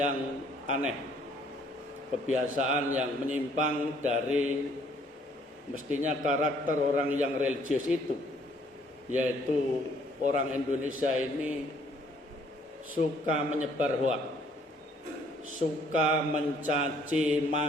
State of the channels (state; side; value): normal; both; correlation 0.63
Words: aneh, kebiasaan yang menyimpang dari mestinya karakter orang yang religius itu, yaitu orang Indonesia ini suka menyebar hoak, suka mencaci